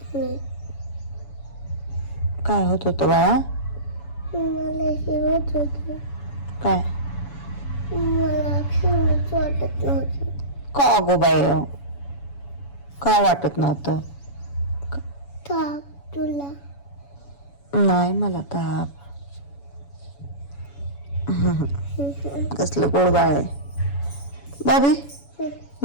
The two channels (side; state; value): right; late; 7.1 ms